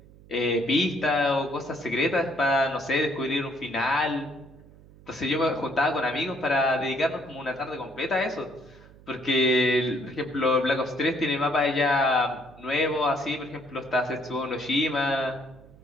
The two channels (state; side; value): noise; right; hum, 23 dB below the sound